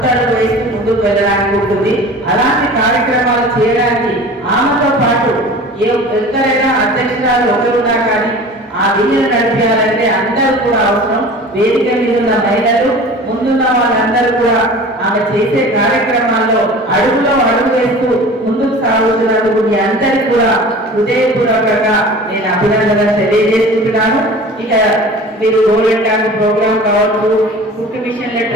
వేసి ముందుకు వెళ్ళడానికి ఉంటుంది. అలాంటి కార్యక్రమాలు చేయడానికి ఆమెతో పాటు ఎవరైనా అధ్యక్షురాలు ఒకరున్నా కానీ ఆ విధులు నడిపించాలంటే అందరూ కూడా అవసరం. వేదిక మీద ఉన్న మహిళలు ముందున్న వాళ్ళందరూ కూడా ఆమె చేసే కార్యక్రమాల్లో అడుగులో అడుగు వేస్తూ ముందుకు సాగుతున్నందుకు మీ అందరికీ కూడా హృదయపూర్వకంగా నేను అభినందనలు తెలియజేసుకుంటున్నాను. ఇక మీరు గోల్డెన్ ట్యాంక్ ప్రోగ్రామ్ కావచ్చు, కుట్టు మిషన్ల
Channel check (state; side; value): normal; both; correlation 0.40